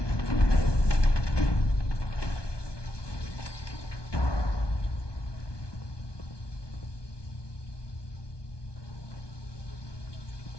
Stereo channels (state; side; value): late; right; 1.2 ms